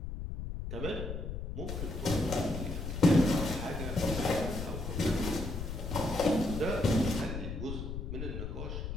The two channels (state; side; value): noise; left; rumble, 5 dB below the sound